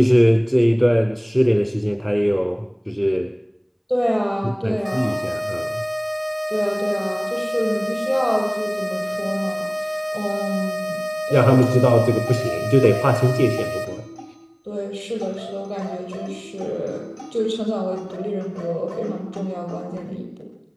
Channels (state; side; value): identical; both; correlation 1.00